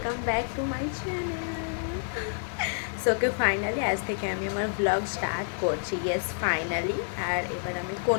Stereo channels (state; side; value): silent; right; digital silence